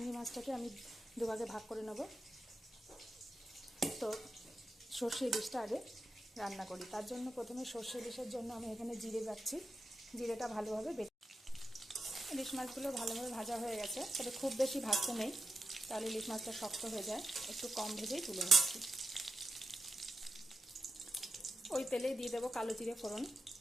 মাছটাকে আমি দুভাগে ভাগ করে নেব। তো সর্ষে ইলিশটা আগে রান্না করি। তার জন্য প্রথমে সর্ষে ইলিশের জন্য আমি এখানে জিরে বাটছি। জিরেটা ভালোভাবে ইলিশ মাছগুলো ভালোভাবে ভাজা হয়ে গেছে, তবে খুব বেশি ভাজতে নেই, তাহলে ইলিশ মাছটা শক্ত হয়ে যায়। একটু কম ভেজেই তুলে নিচ্ছি। ওই তেলেই দিয়ে দেবো কালো জিরে ফোড়ন,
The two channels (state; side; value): normal; both; correlation 0.87